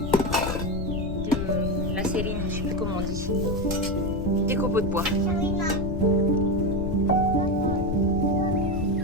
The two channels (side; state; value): left; noise; rumble, 5 dB below the sound